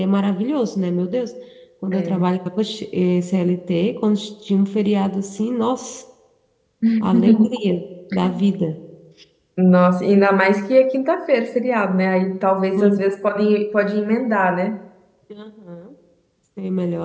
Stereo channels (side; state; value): both; identical; correlation 1.00